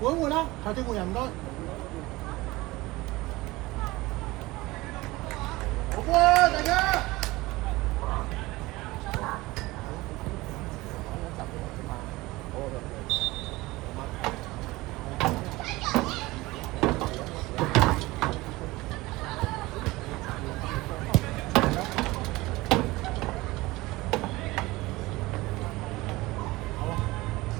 換啦，下次換人唔該。好波啊，大家！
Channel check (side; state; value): left; quieter; 20.4 dB